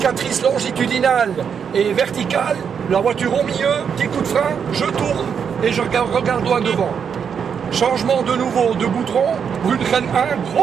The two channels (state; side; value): quieter; left; 7.1 dB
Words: longitudinale et verticale, la voiture au milieu, petit coup de frein, je tourne et je regarde loin devant. Changement de nouveau de goudron, Brunchen 1,